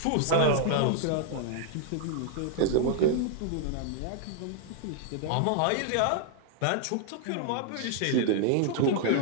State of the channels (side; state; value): both; different; correlation -0.01